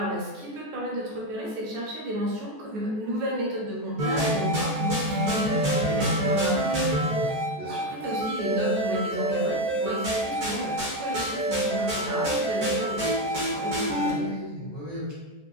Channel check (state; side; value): late; left; 14 ms